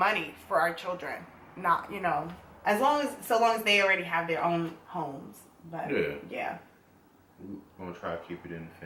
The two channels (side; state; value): both; identical; correlation 1.00